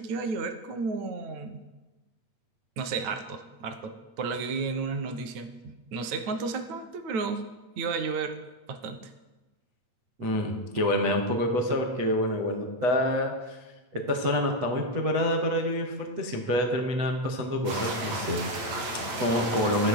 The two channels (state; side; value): late; left; 8.9 ms